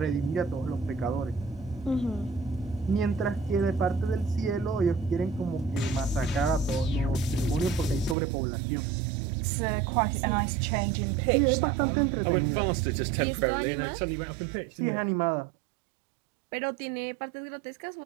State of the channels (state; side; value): drops out; left; at 8.2 s